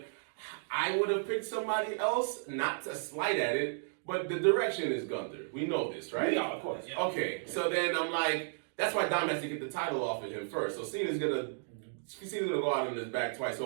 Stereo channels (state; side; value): silent; left; digital silence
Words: I would have picked somebody else, not to slight at it, but the direction is Gunther. We know this, right? Yeah, of course. Yeah. Okay, so then I'm like, that's why Dom has to get the title off of him first. So Cena's gonna go out on his back twice